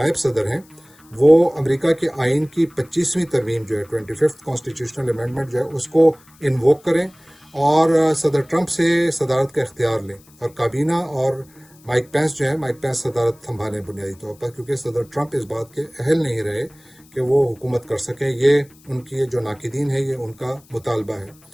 صدر ہیں وہ امریکہ کے آئین کی 25ویں ترمیم جو ہے 25th کانسٹیٹیوشنل امینڈمنٹ جو ہے اس کو انووک کریں اور صدر ٹرمپ سے صدارت کا اختیار لیں، اور کابینہ اور مائک پینس جو ہے مائک پینس صدارت سنبھالیں بنیادی طور پر، کیونکہ صدر ٹرمپ اس بات کے اہل نہیں رہے کہ وہ حکومت کر سکیں۔ یہ ان کی جو ناقدین ہے یہ ان کا مطالبہ ہے۔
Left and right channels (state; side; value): noise; left; hiss, 28 dB below the sound